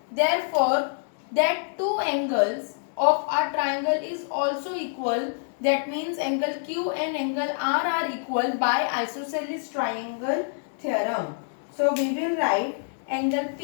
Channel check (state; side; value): silent; right; digital silence